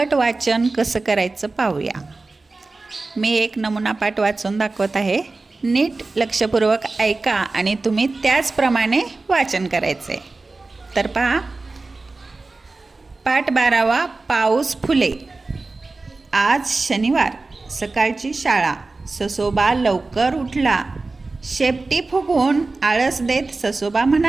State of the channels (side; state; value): left; quieter; 3.5 dB